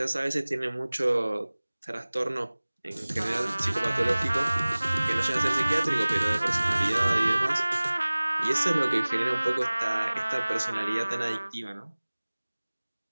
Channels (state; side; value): inverted; both; correlation -1.00